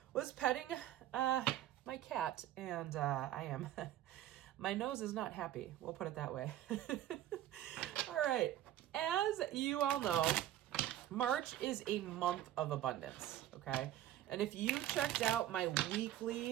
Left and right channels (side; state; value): left; quieter; 12.8 dB